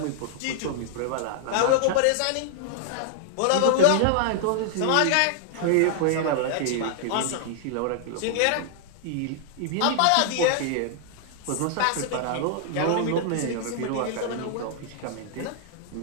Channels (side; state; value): both; different; correlation -0.01